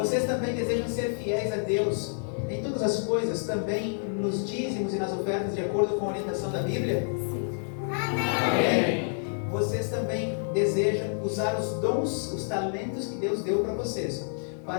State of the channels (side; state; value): right; silent; 59 dB below the other